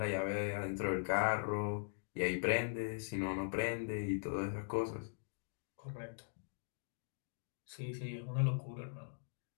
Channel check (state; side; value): silent; right; digital silence